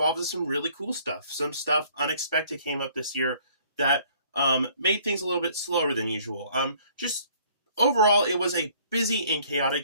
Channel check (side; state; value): both; inverted; correlation -0.58